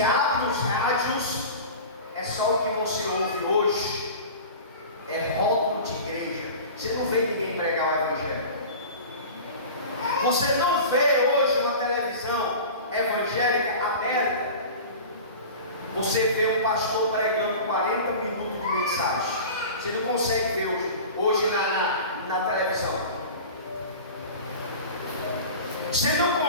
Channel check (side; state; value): both; inverted; correlation -0.35